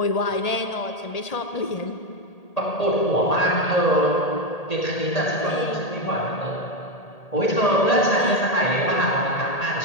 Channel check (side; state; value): right; late; 1.8 ms